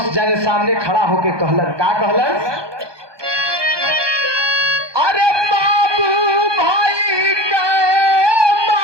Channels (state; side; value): late; left; 1.2 ms